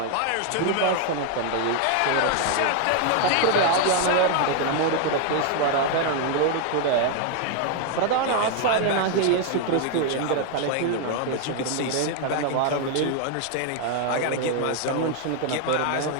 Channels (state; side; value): different; both; correlation 0.00